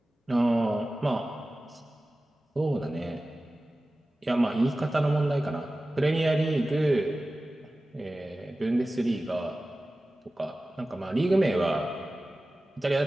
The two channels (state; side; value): normal; both; correlation 0.96